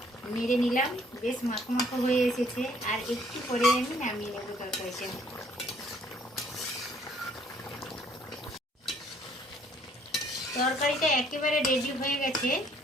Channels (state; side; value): normal; both; correlation 0.62